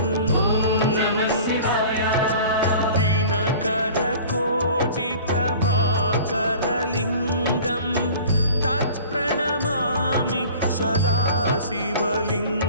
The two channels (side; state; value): both; inverted; correlation -0.44